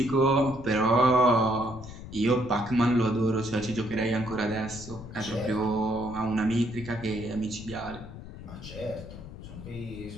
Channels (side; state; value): left; noise; rumble, 13 dB below the sound